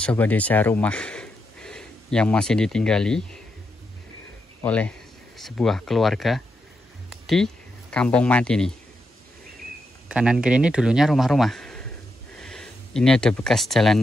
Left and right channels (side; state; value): both; normal; correlation 0.84